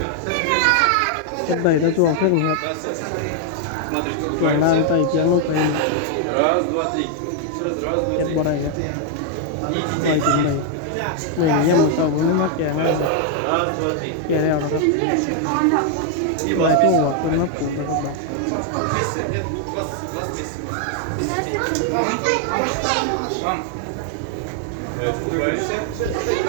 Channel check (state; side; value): different; both; correlation 0.00